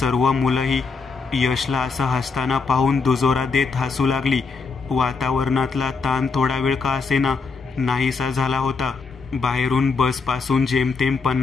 मुलंही यशला असं हसताना पाहून दुजोरा देत हसू लागली. वातावरणातला ताण थोडा वेळ का असेना नाहीसा झाला होता. बाहेरून बसपासून जेमतेम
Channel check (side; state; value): right; quieter; 4.7 dB